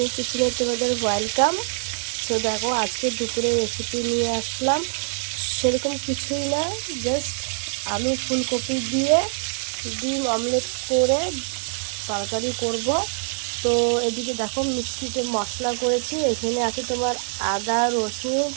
কিচেনে তোমাদের ওয়েলকাম। তো দেখো, আজকে দুপুরে রেসিপি নিয়ে আসলাম। সেরকম কিছুই না, জাস্ট আলু ফুলকপি দিয়ে ডিম অমলেট করে তরকারি করব। তো এদিকে দেখো, মিষ্টিতে মশলা করেছি। এখানে আছে তোমার আদা, রসুন,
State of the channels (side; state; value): left; silent; 62 dB below the other